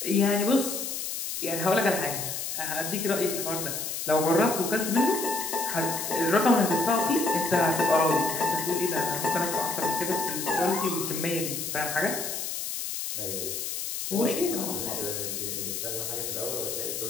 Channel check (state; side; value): noise; left; hiss, 4 dB below the sound